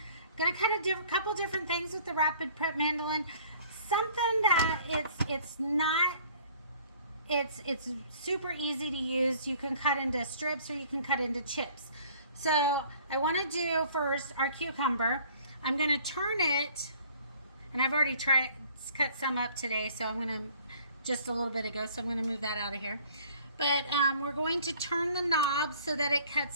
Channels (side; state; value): both; inverted; correlation -0.54